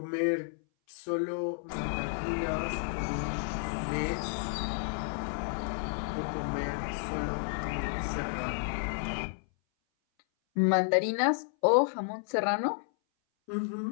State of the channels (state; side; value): silent; right; 57 dB below the other